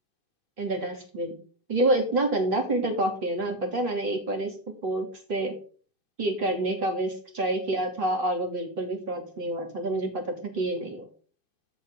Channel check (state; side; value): late; left; 2.5 ms